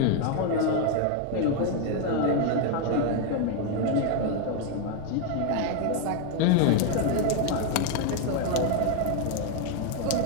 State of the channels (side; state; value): both; different; correlation 0.01